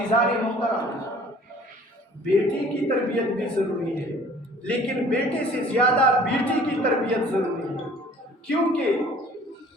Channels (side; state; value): both; normal; correlation 0.52